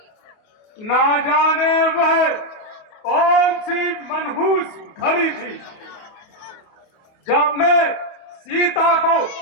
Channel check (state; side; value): late; right; 28 ms